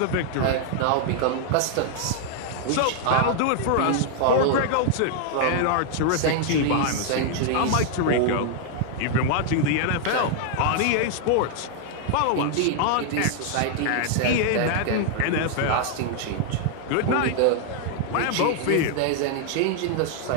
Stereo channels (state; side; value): different; both; correlation 0.00